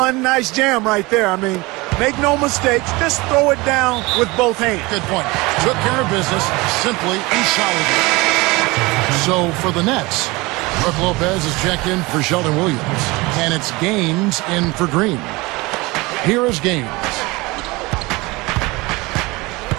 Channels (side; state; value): left; quieter; 23.2 dB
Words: nice jam right there. I mean, make no mistakes. Just throw it down with both hands. Good point. Took care of business simply and solidly. So for the Nets, Brook Lopez is checked in for Sheldon Williams. And it's Gaines in for Green. Here is Gaines.